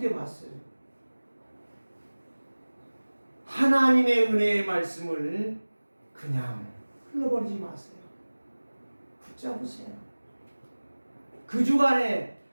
때 봤어요. 하나님의 은혜의 말씀을 그냥 흘러버리지 마세요. 붙잡으세요. 그 주간에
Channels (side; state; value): both; inverted; correlation -1.00